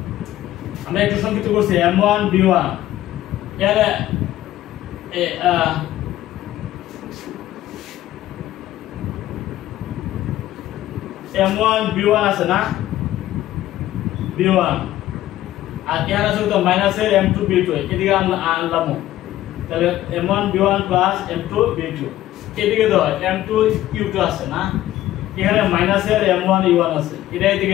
আমরা একটু সংক্ষিপ্ত করছি M1 B1 এর M1 B1 আছে না, B1 আর এর আছে তো মাইনাসের M2 B2, এদিকে আনলাম, তাহলে M1 B1 plus M2 B2, এদিকে তো M2 U2 আছে না, এখানে মাইনাসের M1 U1 আছে, এটা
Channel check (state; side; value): quieter; right; 14.1 dB